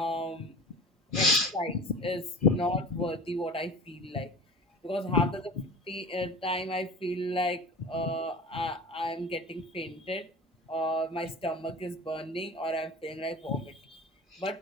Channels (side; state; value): both; normal; correlation 0.37